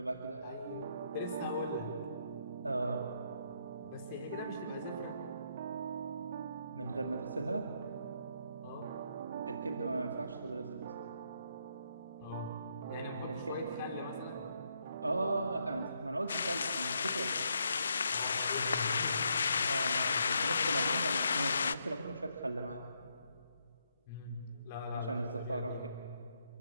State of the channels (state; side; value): inverted; both; correlation -0.76